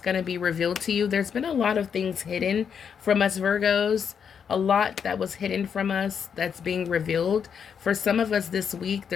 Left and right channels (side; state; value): right; quieter; 7.2 dB